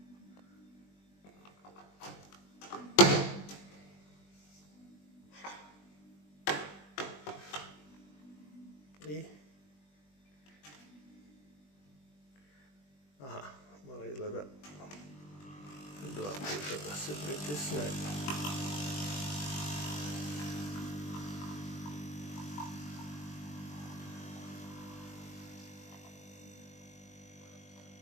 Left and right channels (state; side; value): late; right; 20 ms